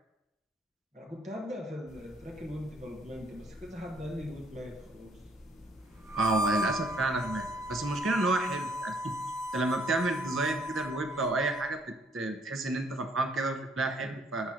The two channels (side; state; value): both; normal; correlation 0.65